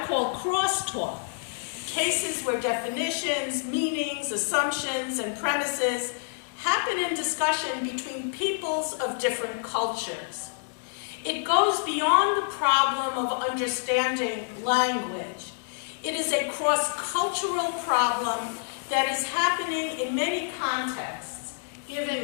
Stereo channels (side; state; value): right; silent; digital silence